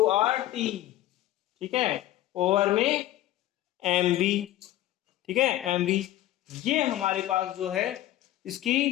R T. ठीक है, ओवर में एम बी। ठीक है, एम बी। ये हमारे पास जो है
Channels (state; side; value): quieter; right; 14.4 dB